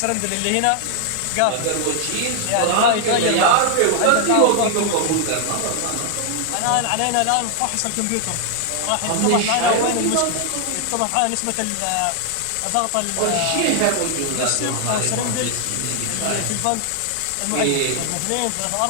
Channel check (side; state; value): both; different; correlation 0.00